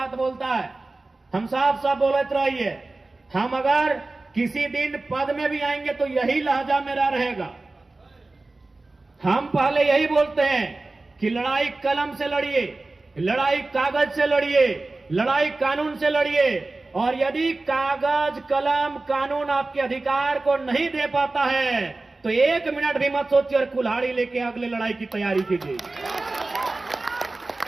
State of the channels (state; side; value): quieter; left; 3.2 dB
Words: बोलता है। हम साफ बोलत रहिए, हम अगर किसी दिन पद में भी आएंगे तो यही लहजा मेरा रहेगा। हम पहले यही बोलते हैं कि लड़ाई कलम से लड़िए, लड़ाई कागज से लड़िए, लड़ाई कानून से लड़िए, और यदि कागज कलम कानून आपके अधिकार को नहीं दे पाता है तो 1 मिनट भी मत सोचिए और कुल्हाड़ी लेके अगले लड़ाई की तैयारी कीजिए।